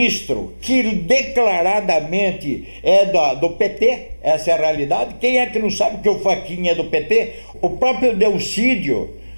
que declaradamente é do PT, essa é a realidade. Quem é que não sabe que o Fachin é do PT? O próprio Delcídio,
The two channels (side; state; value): both; inverted; correlation -1.00